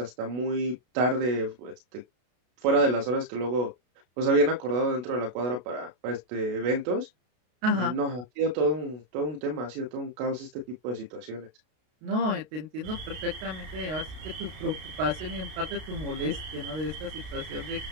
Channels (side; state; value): left; late; 32 ms